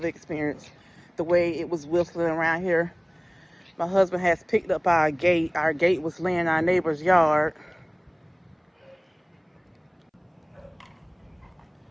experienced. The way it was whistling around here. My husband has picked up our gate. Our gate was laying in our neighbor's yard.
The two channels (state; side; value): identical; both; correlation 1.00